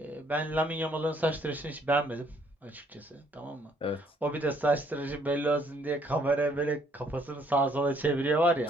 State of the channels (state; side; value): normal; both; correlation 0.65